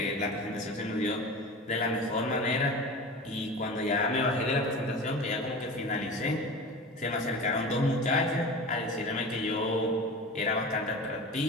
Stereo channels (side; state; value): both; normal; correlation 0.32